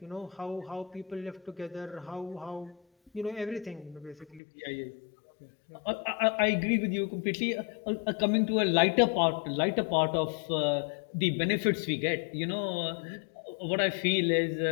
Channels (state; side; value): drops out; right; at 4.4 s